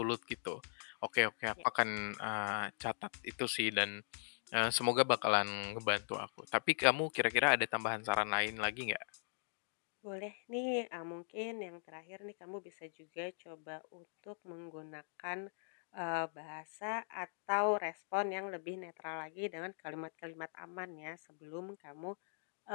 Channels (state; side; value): silent; right; digital silence